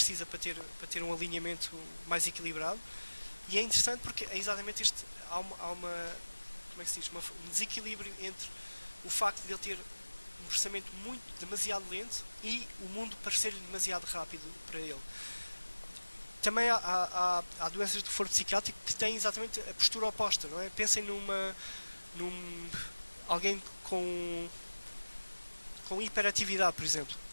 para ter um alinhamento mais equilibrado, e é interessante porque é exatamente este, há uma como é que se diz, um desequilíbrio entre o facto de ele ter um processamento demasiado lento e o mundo parecer-lhe demasiado rápido para ele. Também há doenças do foro psiquiátrico que têm exatamente a postura oposta, não é? Pensem alguém com hiperatividade, por exemplo.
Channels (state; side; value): inverted; both; correlation -1.00